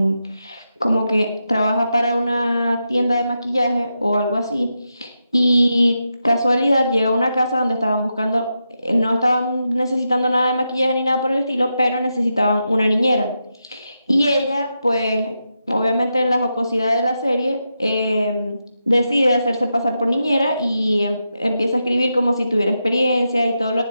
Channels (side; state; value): both; inverted; correlation -0.87